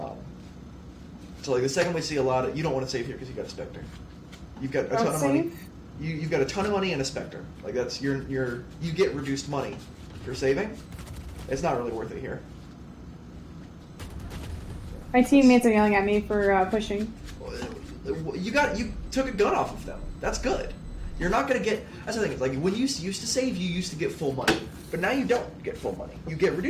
So the second we see a lot of, you don't want to save here because you got a Spectre. You've got a ton of money. you've got a ton of money and a Spectre. Like that's you get reduced money for saving. It's not really worth it here. My teammates are yelling at me for pushing. You took a gun off of them. That's good. You're not gonna get. That's the thing. It's like when you used to save, you used to get full money, but now you don't get full money. You get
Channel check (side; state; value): both; identical; correlation 1.00